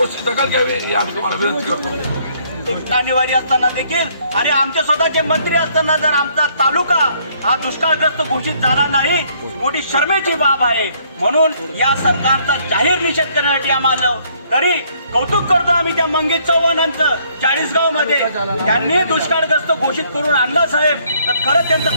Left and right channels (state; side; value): inverted; both; correlation -0.65